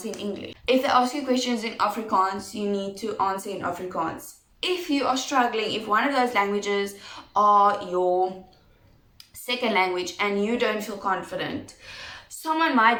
in English. If they ask you questions in Afrikaans, you need to answer in Afrikaans. If you are struggling, if one of those languages are your second language and you don't feel confident, someone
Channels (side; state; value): both; identical; correlation 1.00